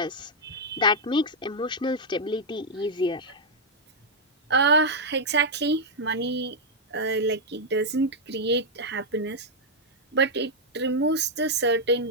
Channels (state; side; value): normal; both; correlation -0.03